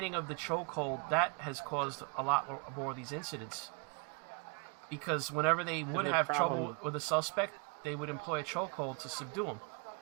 of the chokehold that has caused a lot more of these incidents. Because whenever they would have trouble with a suspect, they would employ a chokehold to subdue him.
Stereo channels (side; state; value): left; quieter; 36.1 dB